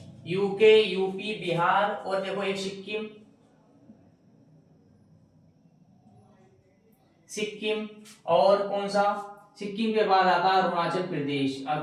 UK, UP, Bihar और देखो एक सिक्किम, सिक्किम और कौन सा, सिक्किम के बाद आता है अरुणाचल प्रदेश,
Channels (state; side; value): identical; both; correlation 1.00